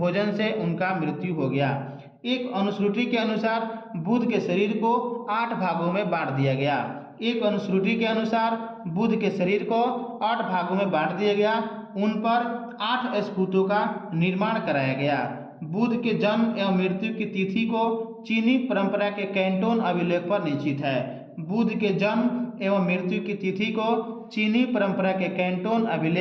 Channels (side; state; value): both; identical; correlation 1.00